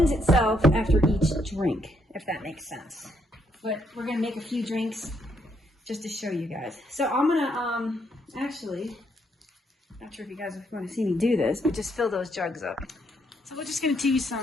itself after each drink, if that makes sense. But we're going to make a few drinks just to show you guys. So I'm going to actually, not sure if you guys want to see me do this, but just fill those jugs up. So we're just going to do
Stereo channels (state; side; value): normal; both; correlation 0.74